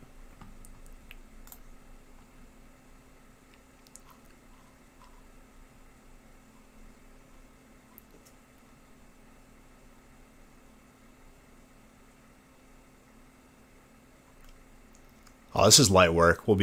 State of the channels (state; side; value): identical; both; correlation 1.00